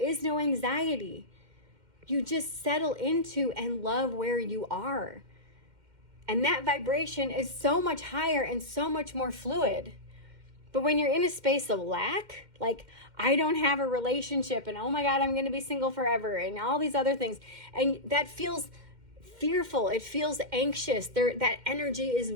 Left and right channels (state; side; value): late; left; 2.1 ms